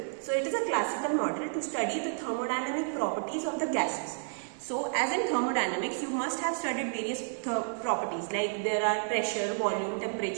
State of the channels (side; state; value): left; silent; digital silence